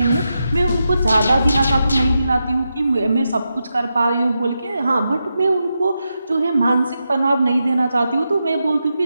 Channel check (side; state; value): both; inverted; correlation -0.87